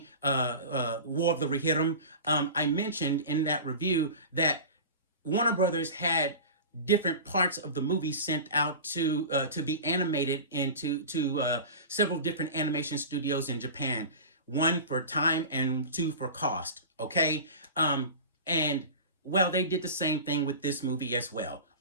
War of the Rohirrim, I mentioned in that review that Warner Brothers had different parts of the movie sent out to be animated into several different animation studios in Japan. One for time and two for cost. Okay, and well, they did the same thing with this movie as well.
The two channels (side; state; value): both; inverted; correlation -0.33